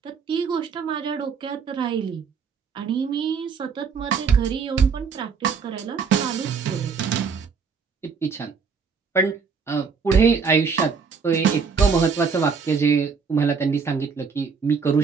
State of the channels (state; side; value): quieter; left; 5.6 dB